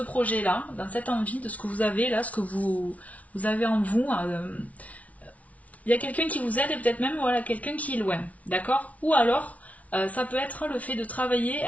projet-là, dans cette envie de ce que vous avez là, ce que vous avez en vous. Il y a quelqu'un qui vous aide et peut-être même voilà, quelqu'un qui est loin, d'accord? Ou alors, ça peut être le fait de travailler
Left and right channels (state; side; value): late; right; 0.068 ms